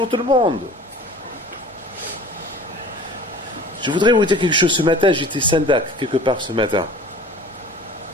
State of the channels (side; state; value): both; normal; correlation 0.44